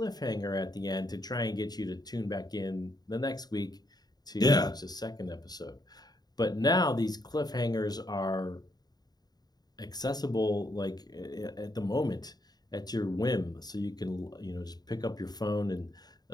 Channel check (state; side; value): late; right; 0.19 ms